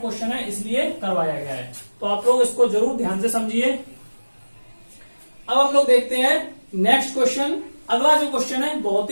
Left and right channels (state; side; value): inverted; both; correlation -1.00